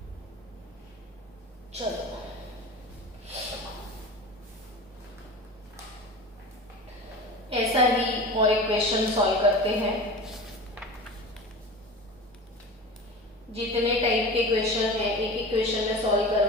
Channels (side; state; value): both; normal; correlation 0.33